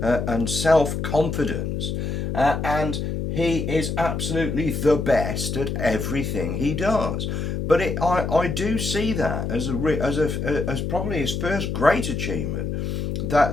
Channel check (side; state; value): left; noise; hum, 2 dB below the sound